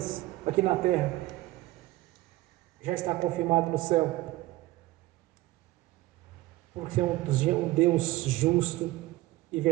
aqui na terra, já está confirmado no céu, porque é um Deus justo e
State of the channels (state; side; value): quieter; left; 17.9 dB